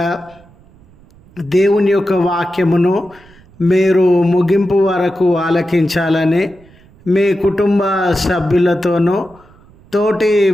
దేవుని యొక్క వాక్యమును మీరు ముగింపు వరకు ఆలకించాలని మీ కుటుంబ సభ్యులతోనూ తోటి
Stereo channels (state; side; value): noise; right; rumble, 27 dB below the sound